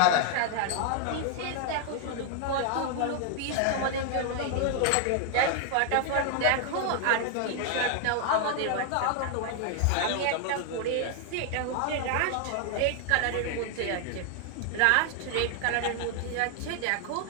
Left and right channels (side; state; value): both; different; correlation 0.00